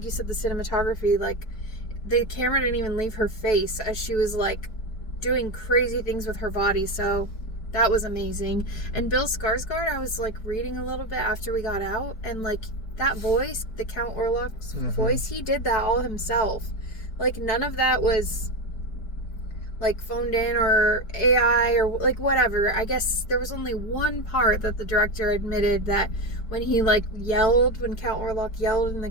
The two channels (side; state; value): right; late; 4.6 ms